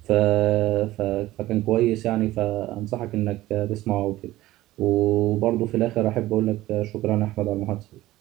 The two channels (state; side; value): quieter; left; 16.4 dB